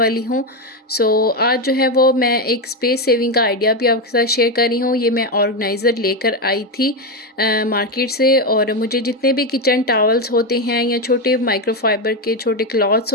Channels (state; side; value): normal; both; correlation 0.10